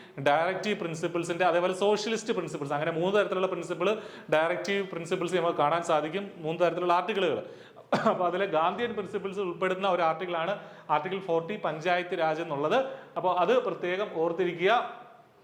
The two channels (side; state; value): both; identical; correlation 1.00